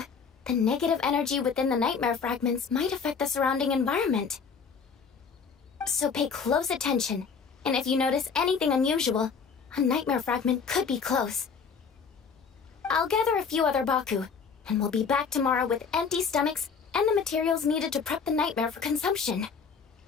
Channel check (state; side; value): quieter; right; 5.8 dB